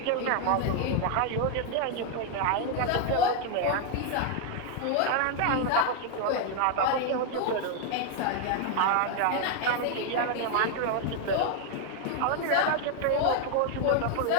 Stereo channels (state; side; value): different; both; correlation 0.01